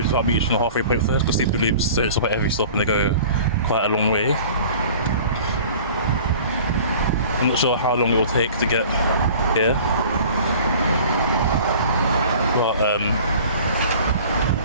without reaching the halfway point first, because super loops don't stop at every stop and they go quite a long way. I'm not sure how long it will take to get here, but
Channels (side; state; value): both; inverted; correlation -0.45